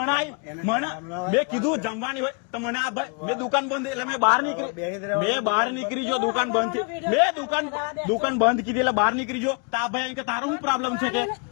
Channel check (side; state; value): right; quieter; 35.7 dB